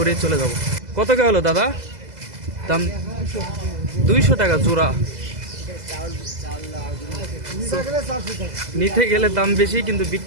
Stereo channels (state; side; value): late; left; 2.0 ms